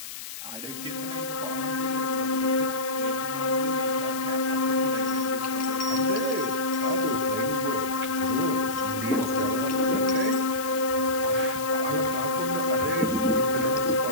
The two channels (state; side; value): noise; left; hiss, 10 dB below the sound